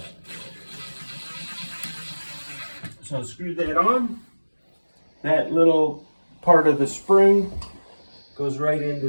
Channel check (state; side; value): inverted; both; correlation -1.00